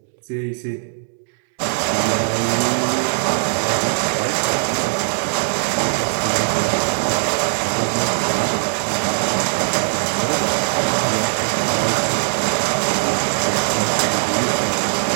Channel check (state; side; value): silent; left; digital silence